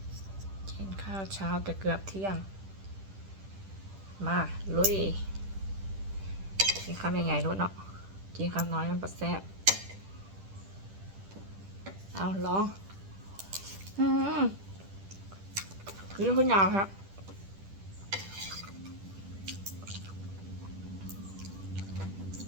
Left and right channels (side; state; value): left; late; 10 ms